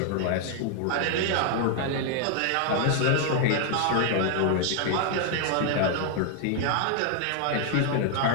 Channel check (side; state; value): both; different; correlation 0.00